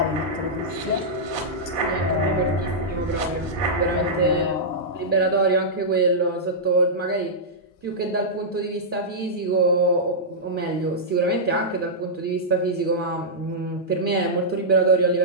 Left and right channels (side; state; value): both; normal; correlation -0.11